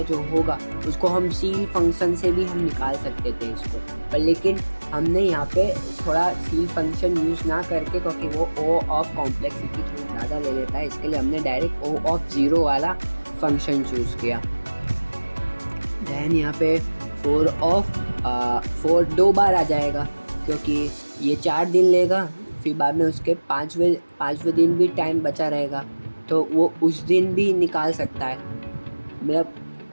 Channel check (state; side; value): inverted; both; correlation -1.00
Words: जो होगा उसको हम सील फंक्शन से भी हम निकाल सकते थे इसको, पर लेकिन हमने यहाँ पे थोड़ा सील फंक्शन यूज़ ना करके, क्योंकि वो O ऑफ कॉम्प्लेक्सिटी थोड़ी ज़्यादा ले लेता है, इसके लिए हमने डायरेक्ट O ऑफ 0 वाला फंक्शन चूज़ किया। दैन यहाँ पे 4 2 बार आ जाएगा, क्योंकि ये 4 दिन लेगा, फिर बाद में उसके 5वें दिन भी टाइम बचा रहेगा, तो वो उस दिन भी निकाल सकता है। मतलब